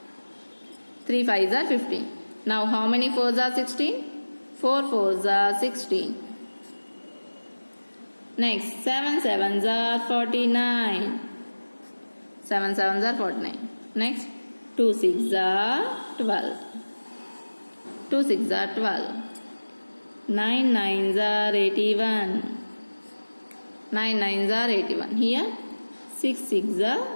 3 5s are 15. Now, how many 4s are 16? 4 4s are 16. Next, 7 7s are 49. 7 7s are 49. Next, 2 6s are 12. 2 6s are 12. 9 9s are 81. 9 9s are 81. Here 6 6s are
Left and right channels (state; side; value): inverted; both; correlation -1.00